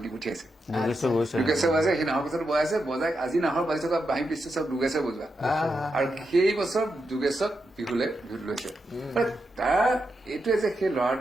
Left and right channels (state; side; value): normal; both; correlation 0.86